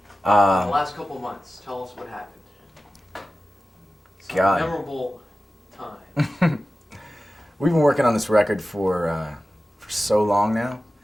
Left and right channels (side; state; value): both; normal; correlation 0.94